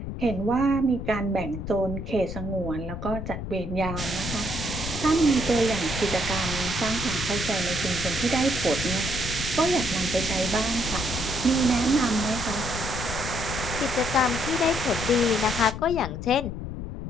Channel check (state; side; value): noise; left; rumble, 7 dB below the sound